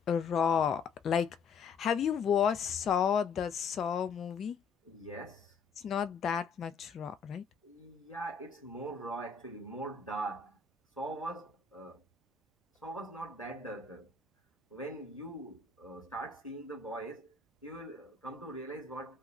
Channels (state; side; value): quieter; right; 5.7 dB